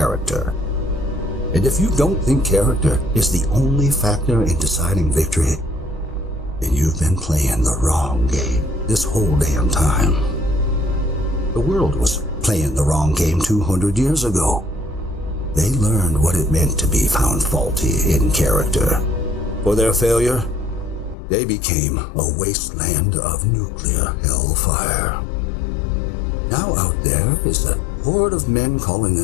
And if you don't think character is the only factor in deciding victory, then you've been playing the wrong game this whole damn time. The world was playing the wrong game 200 years ago. They learned what it meant to be found faulty in character. For their failure, they became a wasteland of nuclear hellfire. Now out there is a horde of men calling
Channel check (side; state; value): right; drops out; at 21.2 s